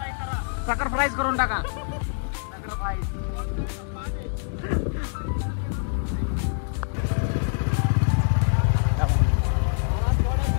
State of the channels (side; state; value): right; silent; 62 dB below the other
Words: सॅक्रिफाईस करून टाका.